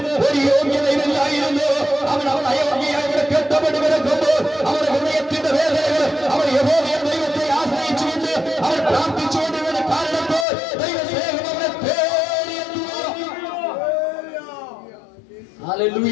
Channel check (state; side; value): drops out; right; at 10.5 s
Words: ഒരു യോഗ്യതയില്ലായിരുന്നു. അവൻ അയോഗ്യയായി ഇവിടെ കെട്ടപ്പെട്ട് കിടക്കുമ്പോൾ അവരുടെ ഹൃദയത്തിന്റെ വേദനകൾ അവർ യഹോവയെ ദൈവത്തെ ആശ്രയിച്ചുകൊണ്ട് അവർ പ്രാർത്ഥിച്ചുകൊണ്ട് കാരണപ്പോൾ ദൈവസ്നേഹം അവരെ തേടിയെത്തുക.